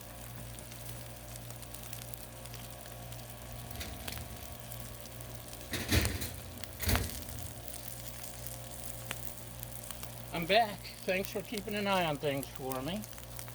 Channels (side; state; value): both; identical; correlation 1.00